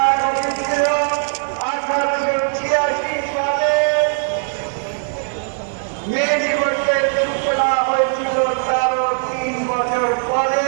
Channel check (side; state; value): left; silent; digital silence